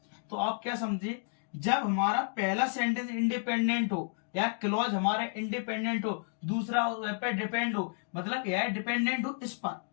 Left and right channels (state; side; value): silent; right; 57 dB below the other